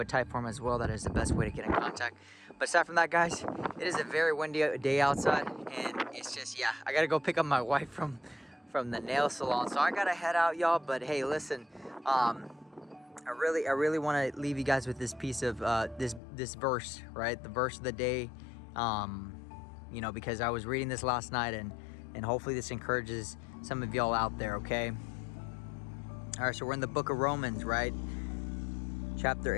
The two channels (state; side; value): drops out; right; at 16.2 s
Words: a type form as well. That is the best way to get in contact. But aside from that, guys, it is a very windy day outside, and it's just, yeah, I gotta go pick up my wife from the nail salon, so I gotta head out, y'all. But hey, listen, I really want to leave you guys with this piece of this verse, right? The verse of the day, you know, because I was reading this last night, and hopefully this encourages some of y'all out there, okay? All right, so we're in the book of Romans, right? Chapter